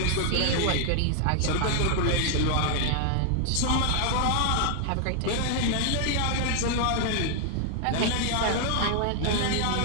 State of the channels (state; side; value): different; both; correlation 0.00